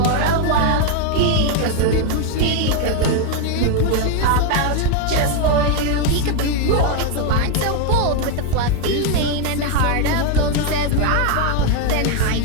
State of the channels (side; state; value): both; different; correlation 0.01